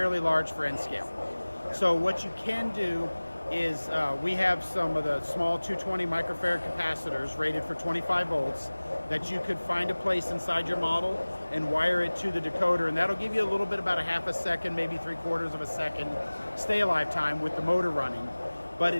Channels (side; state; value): both; inverted; correlation -1.00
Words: large for N-scale. So what you can do is we have some of the small 220 microfarad capacitors rated for 25 volts that you could find a place inside your model and wire it to the decoder, and that'll give you a little bit, about a half a second, maybe 3/4 of a second stay alive time with the motor running. But